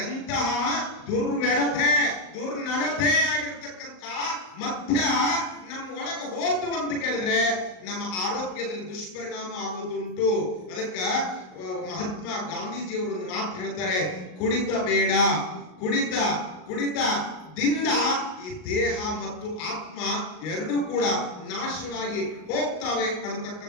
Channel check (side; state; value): right; late; 38 ms